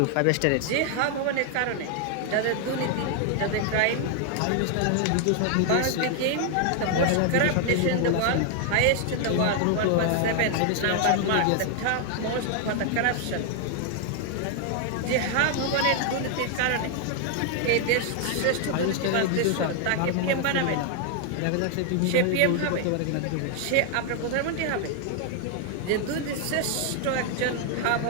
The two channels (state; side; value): different; both; correlation 0.00